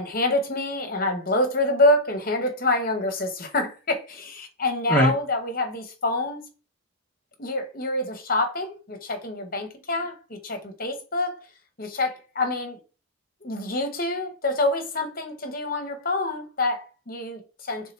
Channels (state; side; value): normal; both; correlation -0.15